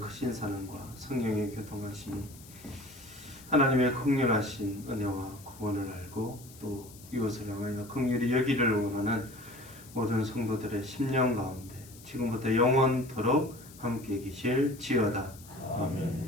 사랑과 성령의 교통하심이 하나님의 긍휼하신 은혜와 구원을 알고 또 이웃을 향하여 긍휼히 여기를 원하는 모든 성도들의 심령 가운데 지금부터 영원토록 함께 계실지어다.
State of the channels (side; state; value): left; noise; hiss, 20 dB below the sound